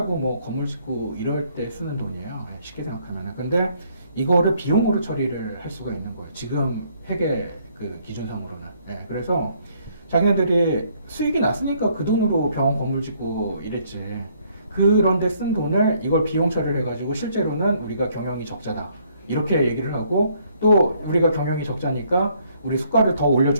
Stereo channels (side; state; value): both; inverted; correlation -0.66